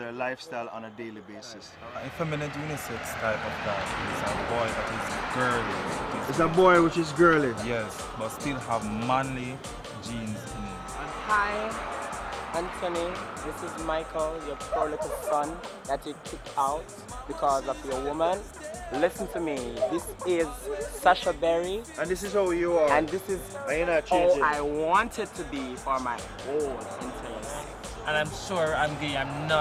lifestyle on a daily basis. Effeminate unisex type of guy is a boy that is girly. It's a boy which is girly? Yes, but still have manly genes in him. Hi, Anthony. This is Michael, your poor little son that you kicked out because of your woman. Listen to me. This is Sasha Berry. And this is how you are. And this is how I want it to be for my whole entire life. And I'm sure I'm gay. I'm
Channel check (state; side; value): identical; both; correlation 1.00